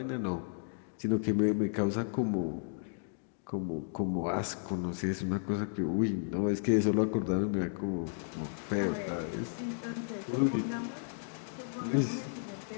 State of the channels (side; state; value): right; silent; digital silence